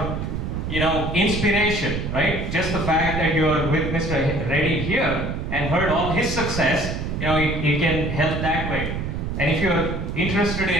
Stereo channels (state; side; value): noise; right; rumble, 3 dB below the sound